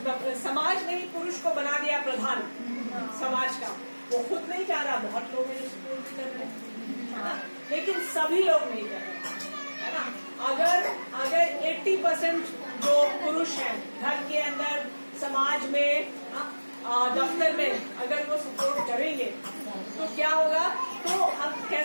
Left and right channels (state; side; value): inverted; both; correlation -1.00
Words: समाज ने ही पुरुष को बना दिया प्रधान समाज का। वो खुद नहीं चाह रहा, बहुत लोग हैं जो सपोर्ट भी कर रहे हैं, लेकिन सभी लोग नहीं कर रहे है ना। अगर 80% जो पुरुष हैं घर के अंदर, समाज में, दफ्तर में अगर वो सपोर्ट करेंगे तो क्या होगा? तो हम कह